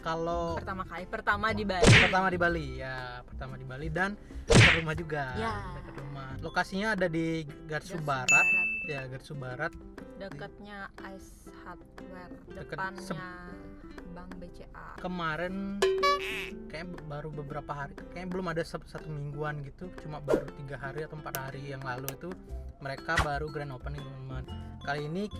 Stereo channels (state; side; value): identical; both; correlation 1.00